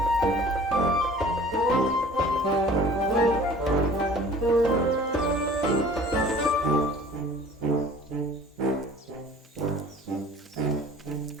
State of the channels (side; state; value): both; normal; correlation 0.47